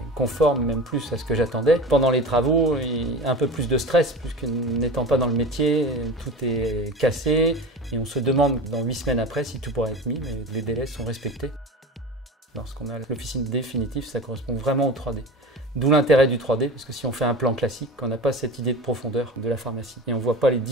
conforme, même plus à ce que j'attendais. Pendant les travaux, il y a un peu plus de stress puisque n'étant pas dans le métier, tout est cassé et on se demande dans 8 semaines après si tout pourra être mis, mais les délais sont respectés. Lorsqu'on a l'officine définitive, ça correspond vraiment au 3D. D'où l'intérêt du 3D parce que si on fait un plan classique, on n'a pas cette idée de profondeur de la pharmacie et on ne voit pas les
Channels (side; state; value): both; normal; correlation 0.32